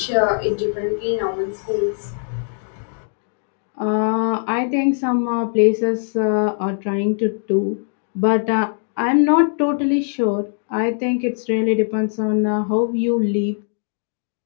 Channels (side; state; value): right; silent; digital silence